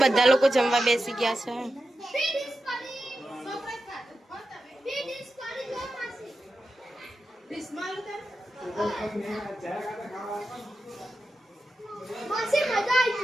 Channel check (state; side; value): normal; both; correlation 0.91